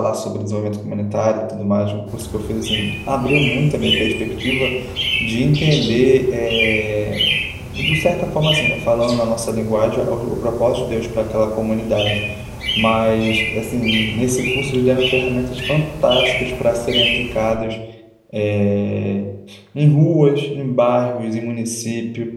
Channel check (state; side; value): identical; both; correlation 1.00